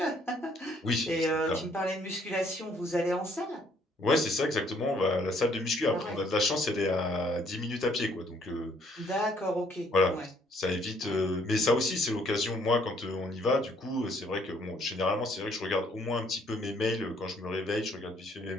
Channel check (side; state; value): both; normal; correlation 0.65